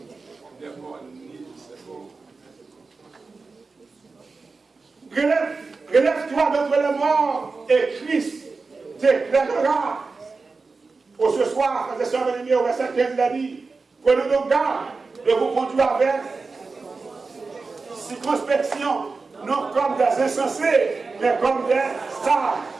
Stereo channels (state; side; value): quieter; left; 4.2 dB